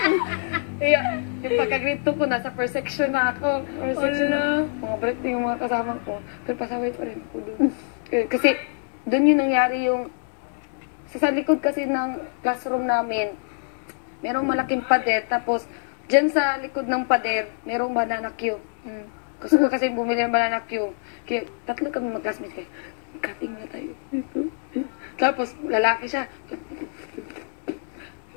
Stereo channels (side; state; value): right; silent; digital silence